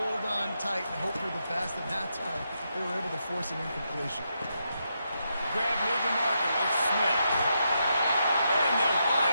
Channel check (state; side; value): inverted; both; correlation -0.82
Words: on tight and hope you're the best. And that time, they were able to force an incompletion. Grab near the marker. It's Smith. And they'll